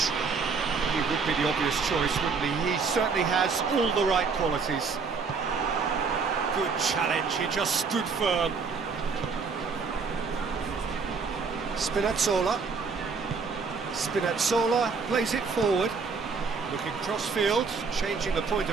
He would be the obvious choice, wouldn't he? He certainly has all the right qualities. Good challenge, he just stood firm. Spinazzola. Spinazzola plays it forward. Looking cross-field, changing the point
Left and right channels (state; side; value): quieter; left; 5.0 dB